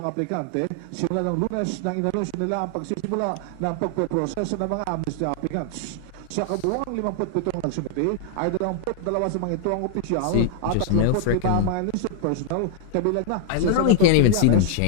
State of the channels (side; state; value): both; different; correlation -0.01